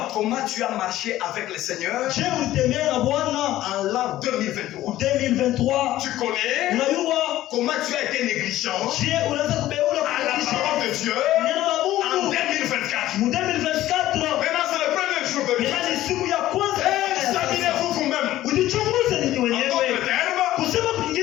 comment tu as marché avec le Seigneur je ulitembea na Bwana en l'an 2023. 2023. Tu connais Unajua comment tu as été négligent je unaweza kubeula à la parole de Dieu neno la en Mungu 2024. mu 2024. Maintenant, c'est le premier jour de l'année. Yaani siku ya kwanza. Examinez-vous vous-même. Ujichunguze ninyi En wenyewe. d'autres termes, Kusema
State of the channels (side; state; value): right; quieter; 14.5 dB